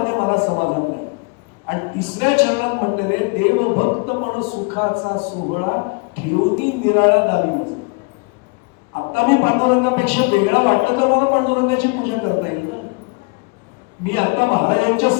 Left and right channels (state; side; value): quieter; right; 30.0 dB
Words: मला समाधान नाही. आणि 3ऱ्या चरणात म्हटले रे, देव भक्तपण सुखाचा सोहळा ठेवणी निराळा दावी माझा. आता मी पांडुरंगापेक्षा वेगळा वाटलं तर मला पांडुरंगाची पूजा करता येईल ना. मी आता महाराजांच्या